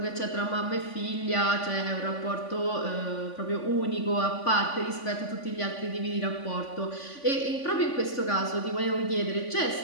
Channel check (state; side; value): late; right; 3.5 ms